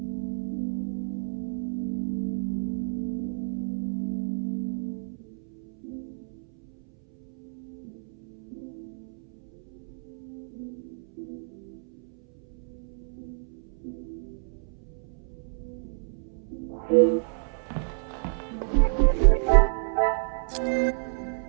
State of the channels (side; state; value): left; silent; 58 dB below the other